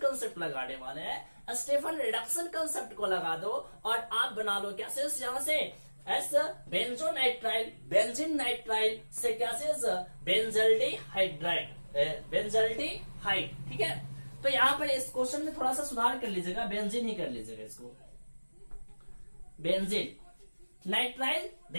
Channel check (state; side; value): inverted; both; correlation -1.00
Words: लगाने वाले हैं। स्टीफन रिडक्शन कंसेप्ट को लगा दो और आप बना लो क्या चीज, यहां से एस बेंजोनाइट्राइल, बेंजीन नाइट्राइल से क्या चीज, बेंजल्डेहाइड, ठीक है। तो यहाँ पर इस क्वेश्चन में थोड़ा सा सुधार कर लीजिएगा, बेंजीन ही कर लीजिएगा इसको, बेंजीन नाइट्राइल।